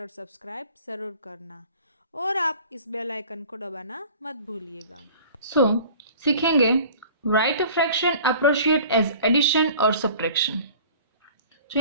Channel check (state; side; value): inverted; both; correlation -0.46